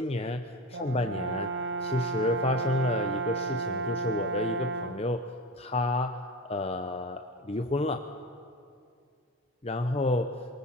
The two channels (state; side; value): normal; both; correlation 0.27